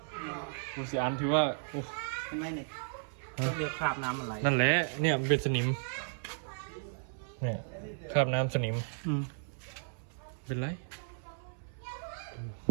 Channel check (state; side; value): silent; left; 55 dB below the other